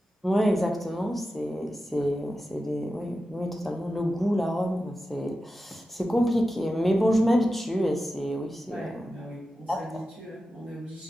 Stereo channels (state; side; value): normal; both; correlation 0.92